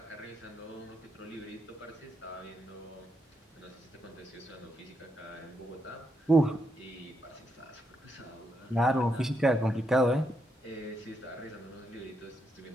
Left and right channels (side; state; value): both; normal; correlation 0.80